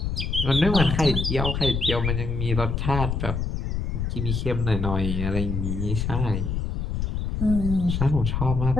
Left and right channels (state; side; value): noise; left; rumble, 1 dB below the sound